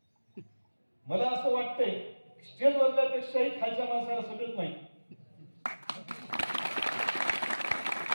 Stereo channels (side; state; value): both; inverted; correlation -1.00